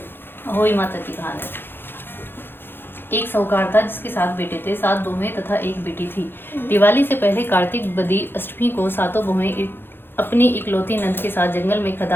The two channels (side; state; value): right; late; 0.10 ms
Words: होई माता की कहानी। एक साहूकार था जिसके 7 बेटे थे, 7 बहुएं तथा एक बेटी थी। दिवाली से पहले कार्तिक बदी अष्टमी को सातों बहुएं अपनी इकलौती नंद के साथ जंगल में